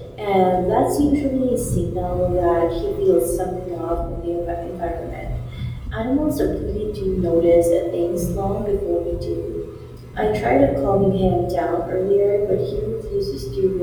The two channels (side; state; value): both; identical; correlation 1.00